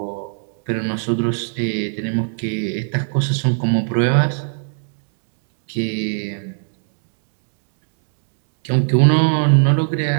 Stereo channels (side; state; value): left; silent; digital silence